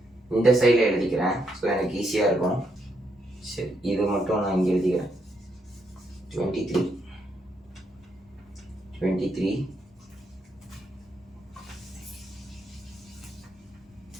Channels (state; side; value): normal; both; correlation 0.78